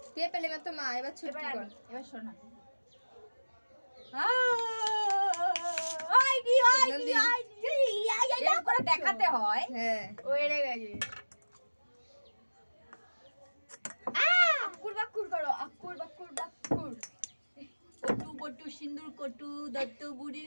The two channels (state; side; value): inverted; both; correlation -1.00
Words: কে পেলে মাত্র মা, এবার ছুটকি কর। এবার শোনা। নন্দী। এরকম করে দেখাতে হয়। হ্যাঁ ও এড়ে গেছে। আকুর বাকুর করো, আকুর বাকুর বাকুর। কটু বটু সিন্দুর কটু দত্ত